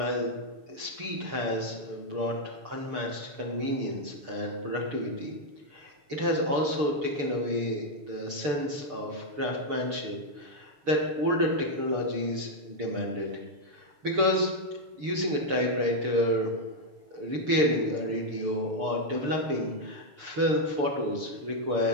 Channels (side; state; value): left; late; 6.8 ms